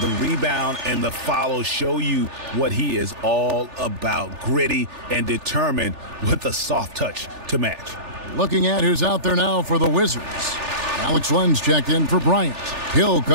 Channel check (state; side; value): late; left; 3.4 ms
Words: rebound and the follow show you what he is all about. Gritty and determined with a soft touch to match. Looking at who's out there now for the Wizards. Alex Len's checked in for Bryant. Hill